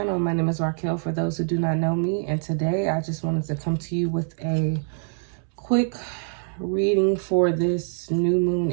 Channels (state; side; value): silent; left; 62 dB below the other